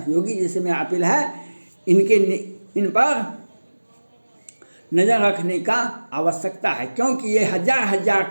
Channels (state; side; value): inverted; both; correlation -1.00